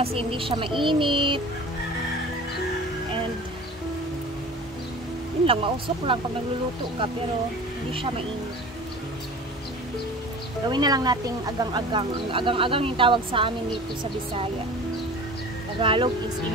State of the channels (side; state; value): both; normal; correlation 0.39